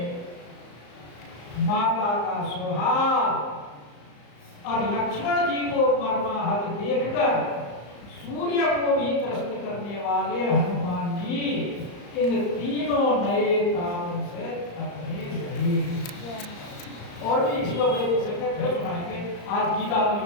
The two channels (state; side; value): late; right; 34 ms